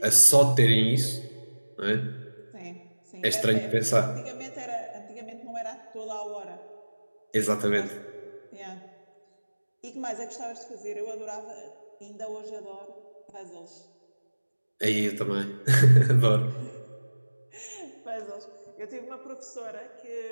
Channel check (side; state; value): both; inverted; correlation -1.00